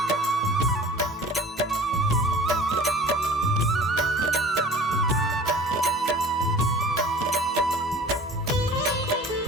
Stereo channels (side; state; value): both; normal; correlation 0.44